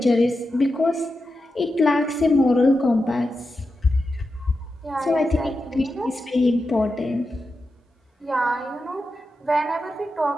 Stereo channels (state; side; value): normal; both; correlation 0.90